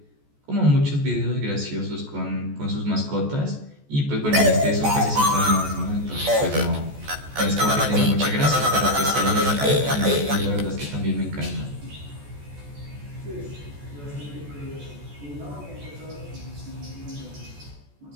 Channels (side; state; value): left; late; 14 ms